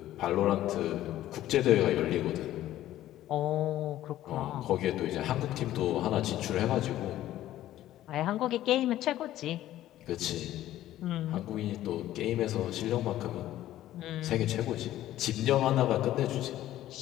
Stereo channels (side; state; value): right; quieter; 13.7 dB